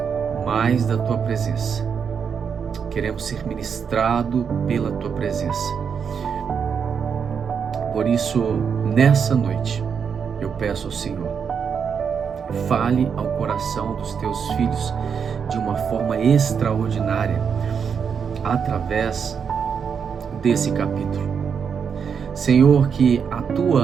mais da Tua presença. Queremos ser ministrado pela Tua presença. Por isso, nessa noite, eu peço ao Senhor, fale ao coração dos Teus filhos de uma forma extraordinária, através desse capítulo. Senhor, que a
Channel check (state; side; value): quieter; left; 6.8 dB